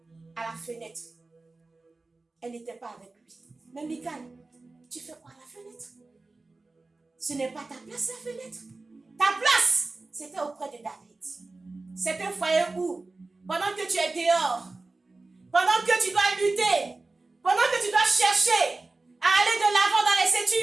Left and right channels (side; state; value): left; quieter; 3.4 dB